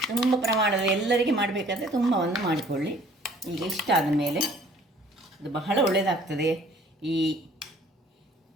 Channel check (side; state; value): both; normal; correlation 0.55